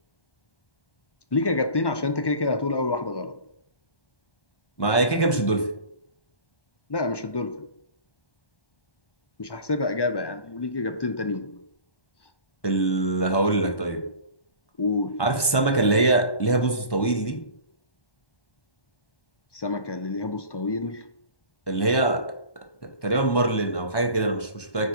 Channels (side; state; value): right; late; 1.1 ms